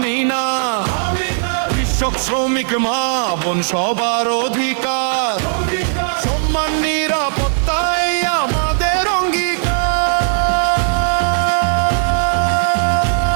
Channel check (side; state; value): left; silent; 68 dB below the other